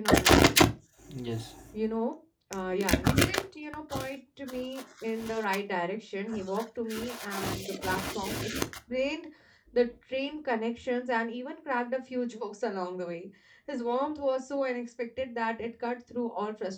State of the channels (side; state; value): both; identical; correlation 1.00